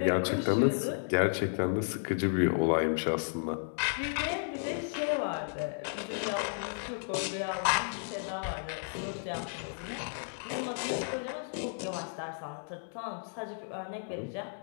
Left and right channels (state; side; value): silent; right; digital silence